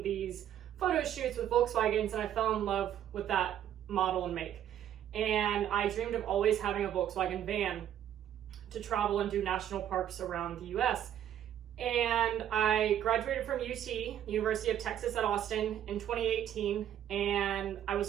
these photo shoots with Volkswagens, and I fell in love with that model and make. And I dreamed of always having a Volkswagen van to travel and do national parks around the US. And I graduated from UT, the University of Texas at Austin, in 2018, and I was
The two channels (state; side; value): quieter; left; 10.7 dB